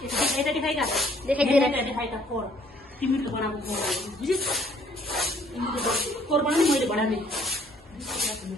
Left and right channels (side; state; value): both; normal; correlation 0.62